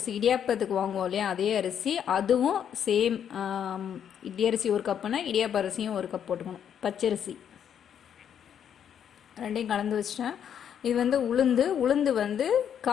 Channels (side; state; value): right; quieter; 8.8 dB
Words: இடியாப்பத்துக்கு வாங்குவோம் இல்லையா, அதே அரிசி. அதுவும் சேம் இட்லி அரிசி ஒரு கப்புனா இடியாப்ப அரிசியும் ஒரு கப் போட்டுக்கணும். பச்சரிசி ரெண்டையும் கலந்து வச்சிட்டேன். இது உளுந்து